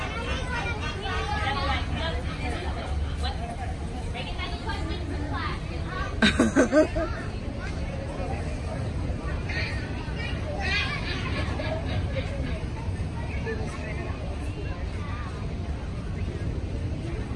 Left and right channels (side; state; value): both; identical; correlation 1.00